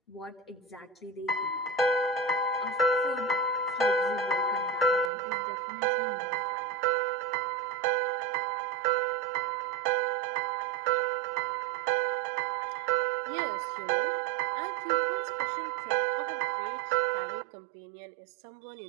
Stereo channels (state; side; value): drops out; left; at 5.1 s